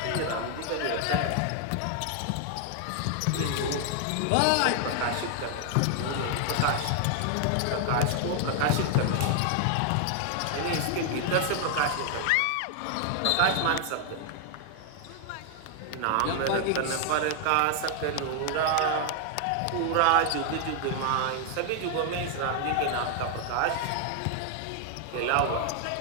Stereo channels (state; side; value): different; both; correlation 0.00